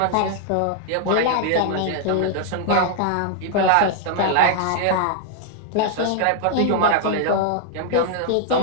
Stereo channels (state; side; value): different; both; correlation 0.00